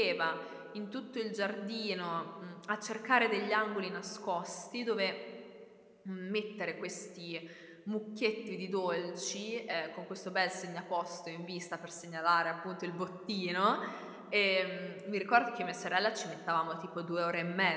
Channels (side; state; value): both; identical; correlation 1.00